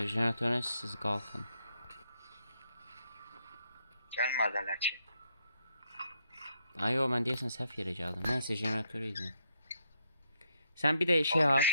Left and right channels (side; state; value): both; inverted; correlation -0.77